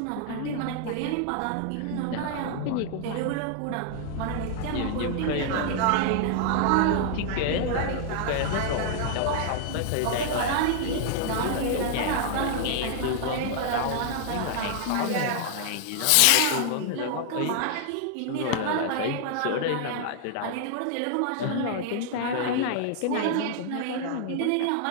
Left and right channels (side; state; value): both; different; correlation 0.00